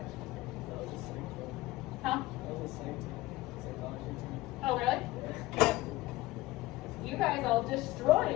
That was the same thing. Huh? That was the same thing. Psychology team. Oh, really? You guys all destroy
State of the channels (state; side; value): quieter; right; 18.4 dB